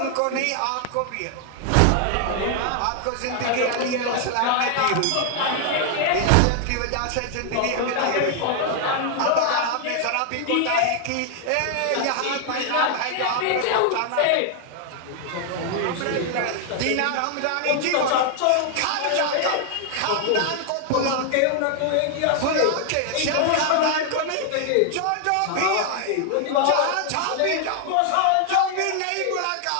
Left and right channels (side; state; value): both; different; correlation 0.00